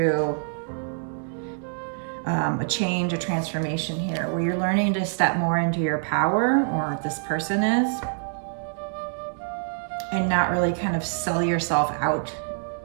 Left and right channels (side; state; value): left; silent; digital silence